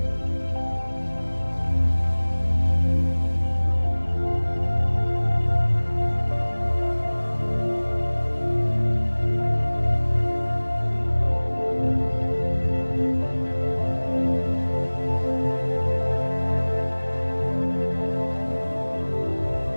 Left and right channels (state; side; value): inverted; both; correlation -1.00